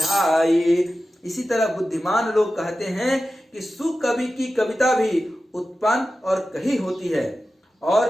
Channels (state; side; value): normal; both; correlation 0.93